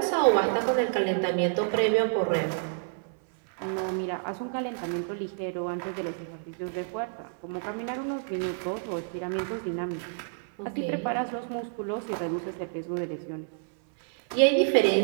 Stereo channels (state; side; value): silent; left; 59 dB below the other